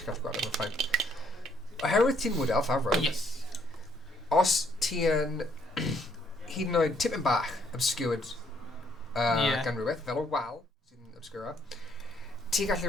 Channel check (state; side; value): normal; both; correlation 0.68